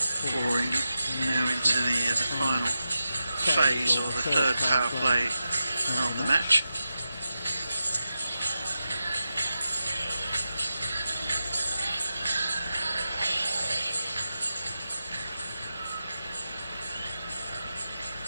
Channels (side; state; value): both; inverted; correlation -0.91